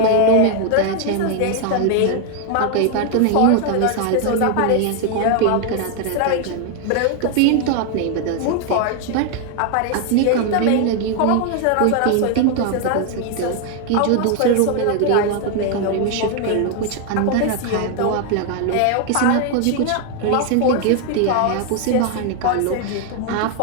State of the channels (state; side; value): different; both; correlation 0.00